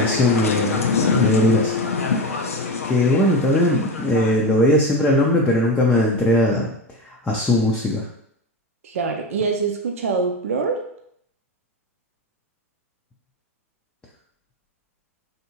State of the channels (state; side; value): normal; both; correlation 0.20